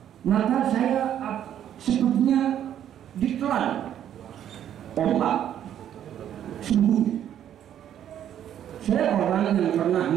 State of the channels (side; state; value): left; quieter; 10.4 dB